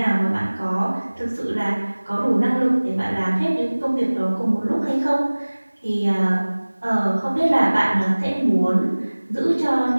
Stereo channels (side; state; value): both; inverted; correlation -1.00